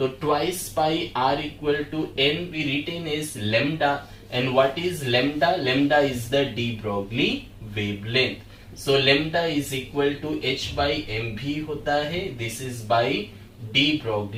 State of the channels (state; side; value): identical; both; correlation 1.00